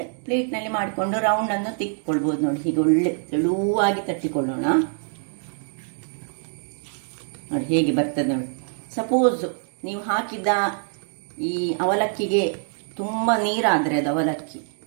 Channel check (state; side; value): silent; left; 61 dB below the other